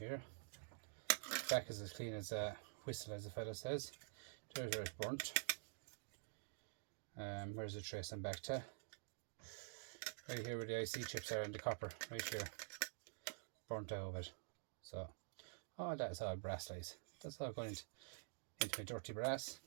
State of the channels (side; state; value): left; silent; digital silence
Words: Back is as clean as a whistle, as the fellow says. There's where it's burnt. Where's the trace I'm back to? Right here where the IC chips are and the copper, right here. Burnt out of it. So, all that is all brass lies. That's all going into my dirty brass.